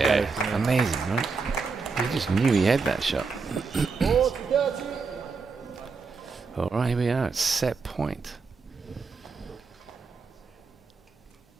amazing, right? He just knew he had that shot. All right, here we are at set point.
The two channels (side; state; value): left; quieter; 4.7 dB